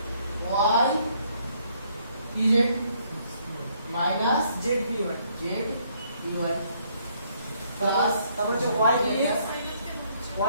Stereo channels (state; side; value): inverted; both; correlation -0.68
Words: Y P Z minus Z পি1 জেড পিওয়াই প্লাস তারপর হচ্ছে y px